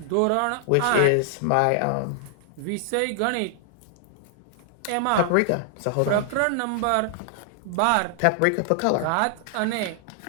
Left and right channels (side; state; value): both; different; correlation -0.01